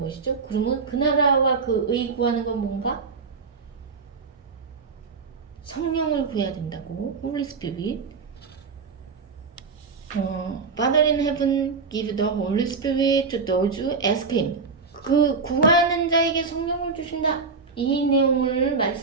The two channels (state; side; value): quieter; left; 4.7 dB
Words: 그러면 그 나라와 그 의 구하는 건 뭔가? 성령을 구해야 된다고. Holy Spirit. Father in heaven, give the Holy Spirit to those who ask Him. 그 구하는 자에게 성령을 주신다. 이 내용을